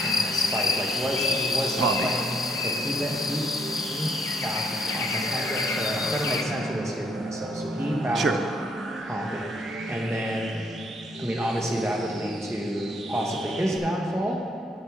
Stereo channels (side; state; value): both; normal; correlation 0.70